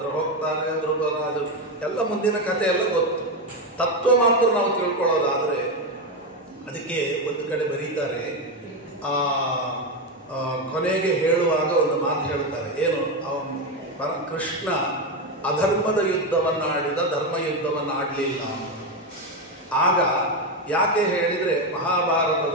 ಹೋಗ್ತಾರೆ. ಧ್ರುಪದರಾಜರು ಎಲ್ಲ ಮುಂದಿನ ಕಥೆ ಎಲ್ಲ ಗೊತ್ತು. ತತ್ವ ಮಾತ್ರ ನಾವು ತಿಳ್ಕೊಳ್ಳೋದಾದ್ರೆ ಅದಕ್ಕೆ ಒಂದು ಕಡೆ ಬರೀತಾರೆ. ಕೊನೆಗೆ ಹೇಳುವಾಗ ಒಂದು ಮಾತು ಹೇಳ್ತಾರೆ. ಏನು? ಕೃಷ್ಣ ಅಧರ್ಮದ ಯುದ್ಧವನ್ನು ಆಡಿದ, ಧರ್ಮ ಯುದ್ಧವನ್ನು ಆಡಲಿಲ್ಲ. ಆಗ ಯಾಕೆ ಹೇಳಿದರೆ,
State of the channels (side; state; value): both; normal; correlation 0.11